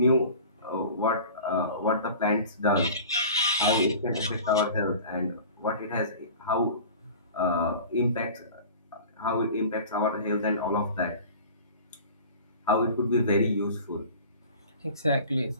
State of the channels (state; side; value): inverted; both; correlation -0.40